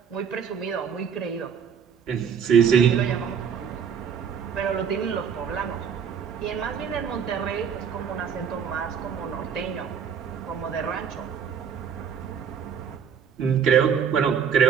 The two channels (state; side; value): quieter; left; 7.3 dB